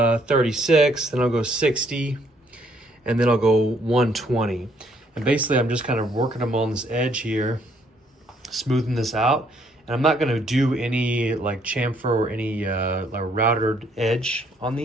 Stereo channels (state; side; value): normal; both; correlation 0.67